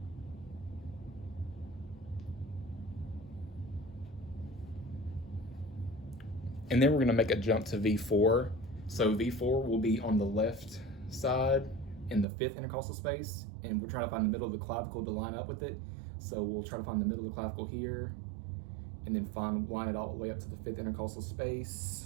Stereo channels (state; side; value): drops out; left; at 12.2 s